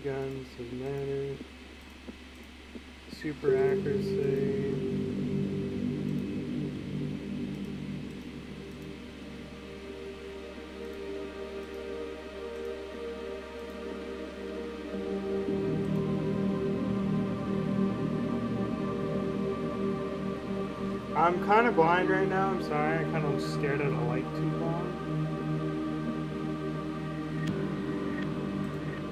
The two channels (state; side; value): identical; both; correlation 1.00